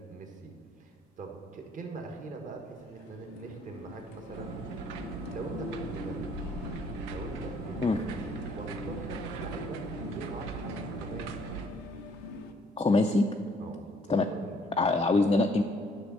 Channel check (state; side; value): normal; both; correlation 0.63